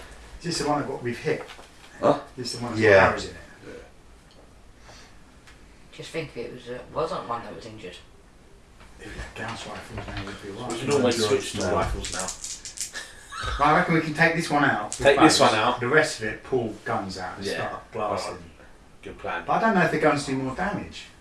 Is this the one that we've hit? Huh? Is this the one that's Yeah. got arrows in it? Just think if it wasn't one that was injured. If it had Gauss rifles, now would be We right. can always switch to now. rifles now. Right, I reckon we can take this one out. with Take this bows. one out. The rest of it, pull guns out and Yeah. start blasting. Good plan. But I don't know if the guns do more damage.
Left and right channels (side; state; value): both; identical; correlation 1.00